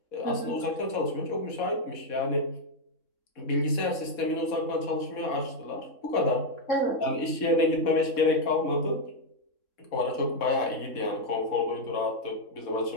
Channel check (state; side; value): late; right; 3.6 ms